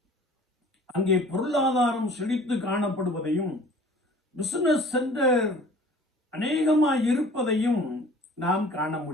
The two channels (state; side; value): normal; both; correlation 0.48